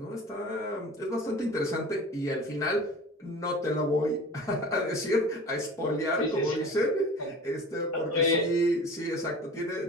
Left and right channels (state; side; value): normal; both; correlation 0.40